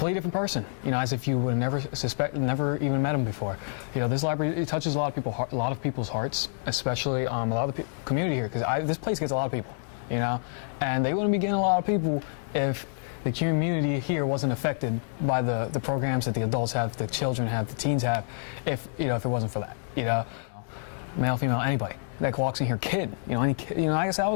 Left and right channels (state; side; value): silent; right; digital silence